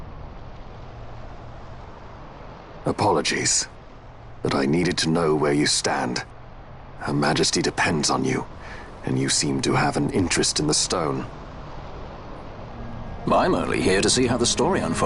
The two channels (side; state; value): both; identical; correlation 1.00